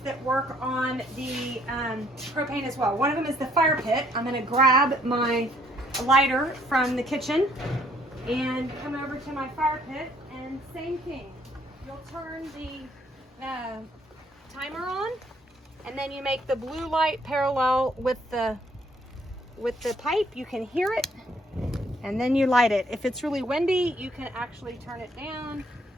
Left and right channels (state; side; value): normal; both; correlation 0.65